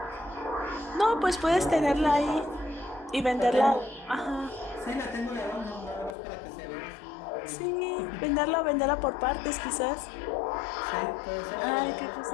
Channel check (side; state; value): right; drops out; at 6.2 s